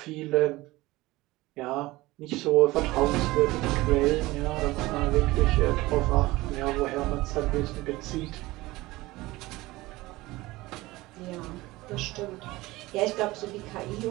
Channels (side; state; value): left; quieter; 19.5 dB